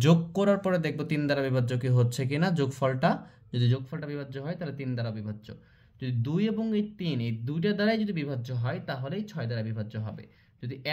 যোগ করার পরে দেখব ৩ দ্বারা বিভাজ্য কি হচ্ছে কিনা। যোগফলটা, যদি যোগফলটা বিভাজ্য হয় তাহলে ৩ দ্বারা বিভাজ্য। যদি ২ এবং এই ৩ এই দুইটা দ্বারাই যদি বিভাজ্য হয় তাহলেই ৬ দ্বারা বিভাজ্য হবে। যদি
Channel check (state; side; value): identical; both; correlation 1.00